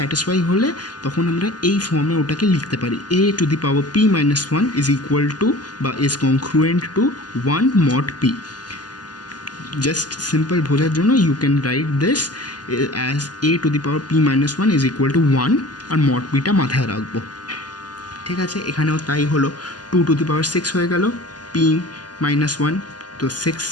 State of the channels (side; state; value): right; late; 0.70 ms